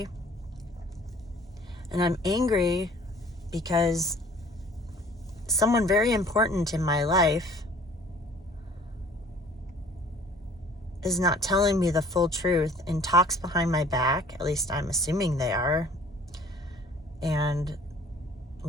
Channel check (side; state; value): both; normal; correlation 0.52